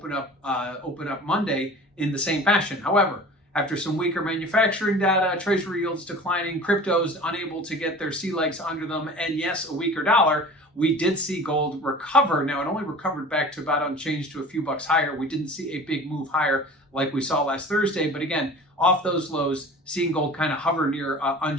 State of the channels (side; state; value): both; normal; correlation 0.41